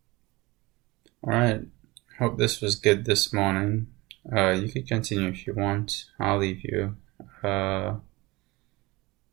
Alright, hope this was good this morning. You could continue if you want. I'll leave you. Have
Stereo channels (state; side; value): quieter; left; 22.1 dB